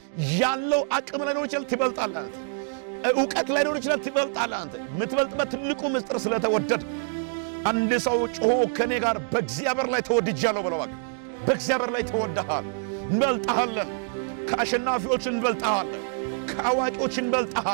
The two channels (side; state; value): left; silent; digital silence